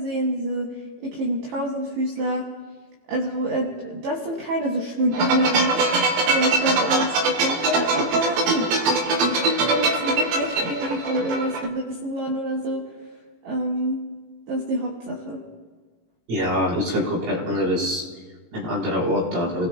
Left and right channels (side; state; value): left; late; 18 ms